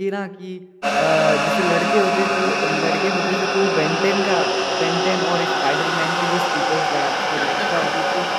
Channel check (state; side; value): identical; both; correlation 1.00